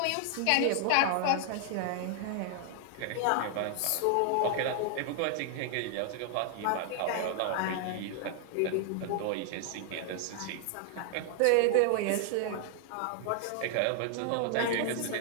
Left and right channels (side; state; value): both; different; correlation 0.00